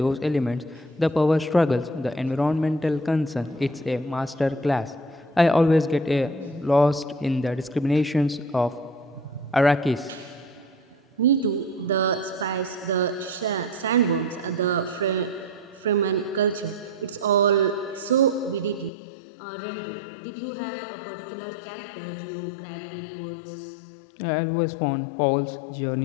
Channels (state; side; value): drops out; right; at 18.9 s